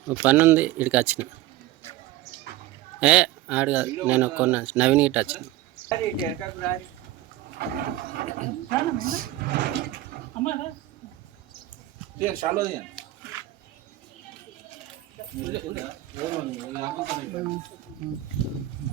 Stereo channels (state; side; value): quieter; left; 15.2 dB